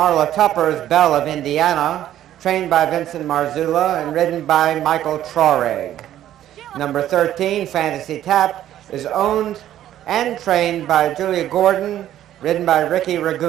Tupper's Belle of Indiana, trained by Vincent Marzullo and ridden by Michael Traurig. Number 13, Fantasy Tap, is owned and trained by Julia Gordon, ridden by Ricky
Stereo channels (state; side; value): quieter; left; 12.1 dB